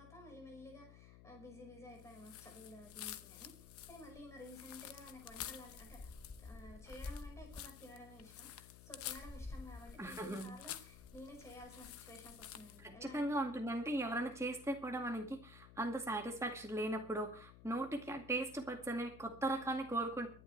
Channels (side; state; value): left; noise; hum, 16 dB below the sound